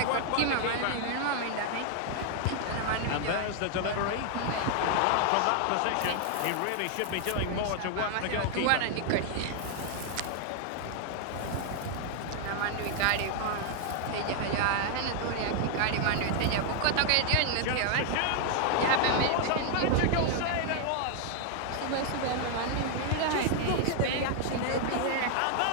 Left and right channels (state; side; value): different; both; correlation 0.00